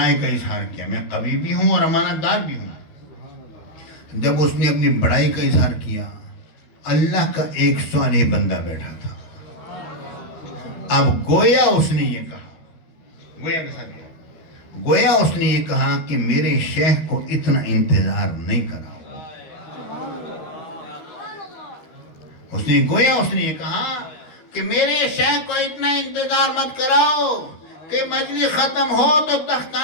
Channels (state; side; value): late; right; 13 ms